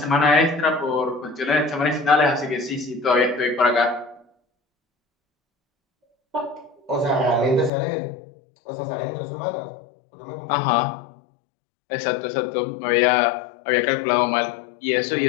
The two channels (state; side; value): drops out; right; at 7.7 s